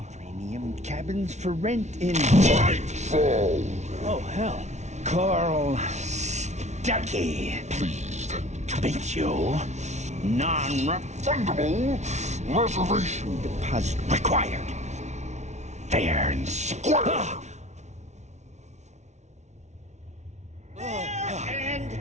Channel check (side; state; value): left; late; 0.33 ms